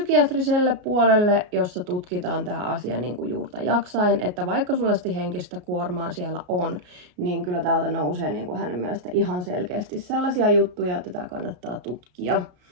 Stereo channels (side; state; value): left; late; 33 ms